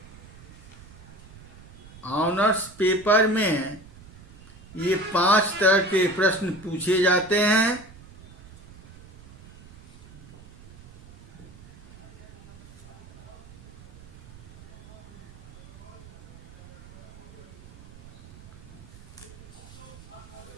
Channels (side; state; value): right; noise; rumble, 20 dB below the sound